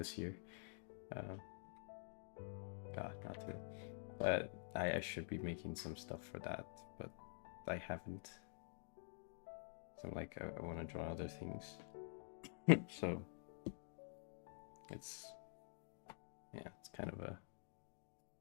year. Uh, God, not today. But I should be making some stuff for that, but I haven't. So like I want to draw other things. So it's yeah, it's kind of a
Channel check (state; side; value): silent; right; digital silence